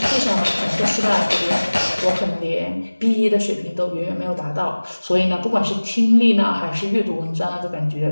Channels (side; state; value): both; inverted; correlation -1.00